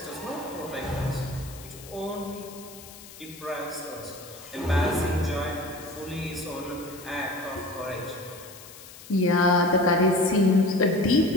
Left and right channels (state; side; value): noise; left; hiss, 18 dB below the sound